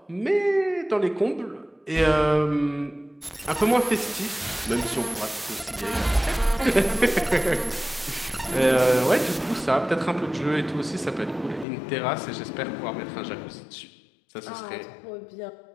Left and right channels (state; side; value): drops out; right; at 11.7 s